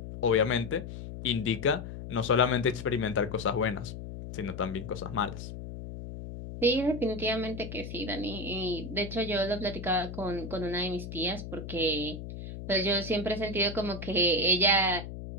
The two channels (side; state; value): left; noise; hum, 9 dB below the sound